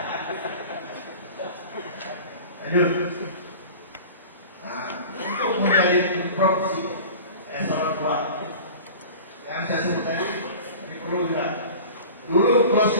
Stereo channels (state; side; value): inverted; both; correlation -0.38